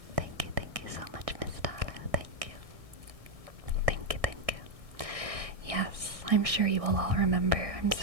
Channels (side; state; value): left; late; 1.6 ms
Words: Thank you so much, Miss Tala. Thank you. Thank you. Yes, I'm sure you will all remember.